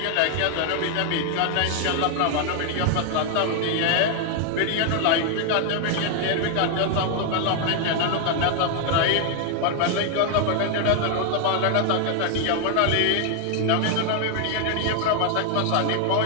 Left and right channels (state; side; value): different; both; correlation 0.00